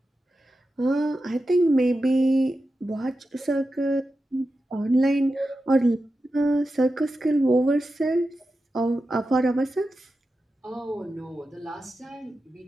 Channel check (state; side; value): normal; both; correlation 0.91